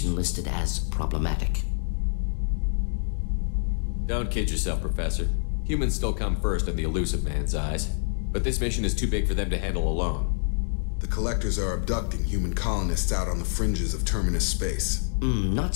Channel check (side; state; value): right; silent; digital silence